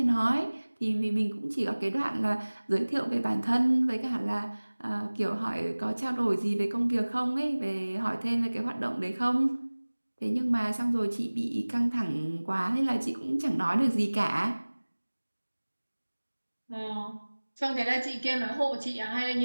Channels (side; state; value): both; inverted; correlation -1.00